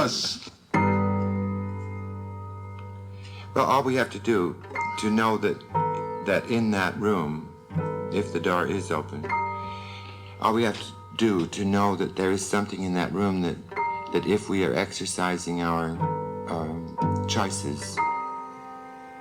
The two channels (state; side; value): identical; both; correlation 1.00